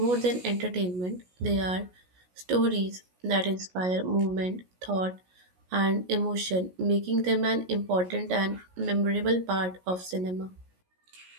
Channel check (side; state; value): left; late; 17 ms